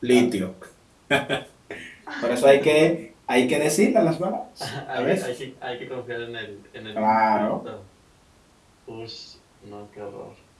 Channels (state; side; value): identical; both; correlation 1.00